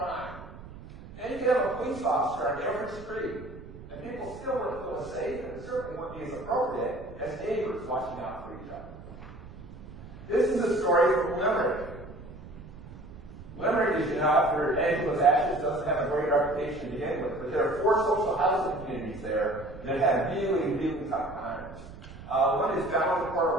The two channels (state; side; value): noise; right; rumble, 16 dB below the sound